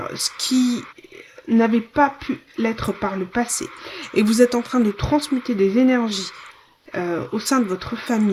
ce qui n'avait pas pu l'être par le passé. Et vous êtes en train de transmuter des énergies au sein de votre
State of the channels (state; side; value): identical; both; correlation 1.00